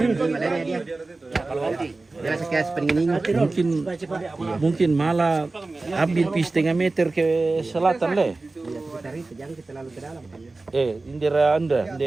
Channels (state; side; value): quieter; left; 3.4 dB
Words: ini malahnya dia. Kalau nanti dia sekian pengen Mungkin malah ambil pi 1,5 meter ke selatan le. sekitar itu jangan kita lalu ke dalam. Indira anda